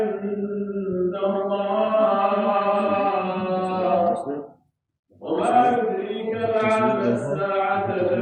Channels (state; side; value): identical; both; correlation 1.00